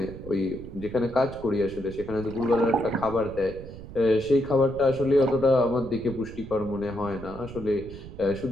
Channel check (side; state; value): right; noise; rumble, 14 dB below the sound